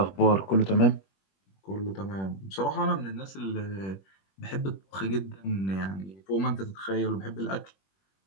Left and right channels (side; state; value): right; late; 21 ms